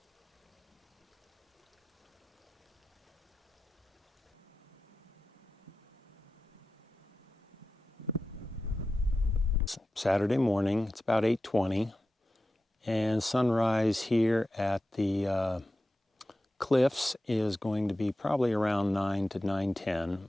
Saturday morning, it's about 8:20, and sunrise here at the cliffs is going to be probably around 9 to 9:10,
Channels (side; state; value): both; normal; correlation 0.93